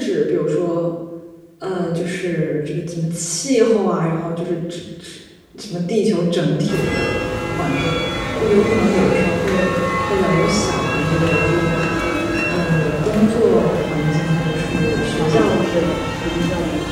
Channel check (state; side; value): identical; both; correlation 1.00